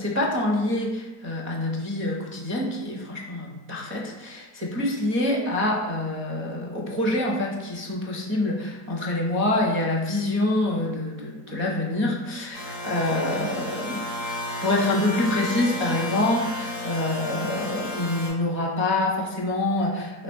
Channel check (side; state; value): left; late; 4.2 ms